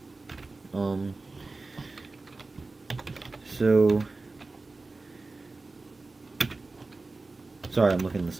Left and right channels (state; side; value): quieter; left; 3.5 dB